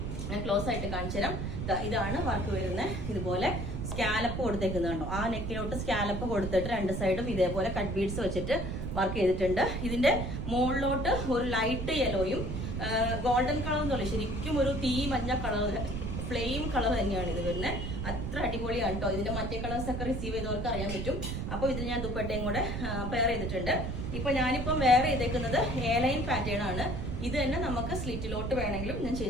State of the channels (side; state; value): right; noise; rumble, 3 dB below the sound